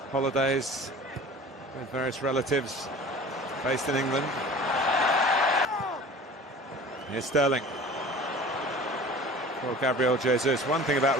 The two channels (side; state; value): both; normal; correlation 0.41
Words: holidays. with various relatives based in England. Here's Sterling for Gabriel Jesus. One thing about